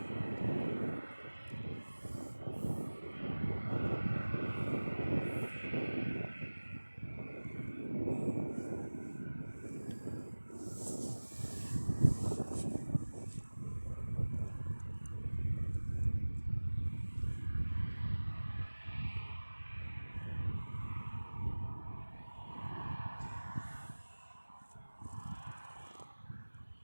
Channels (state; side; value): inverted; both; correlation -1.00